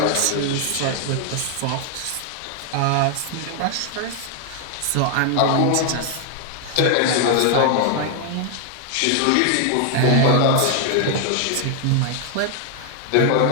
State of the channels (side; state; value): both; different; correlation 0.00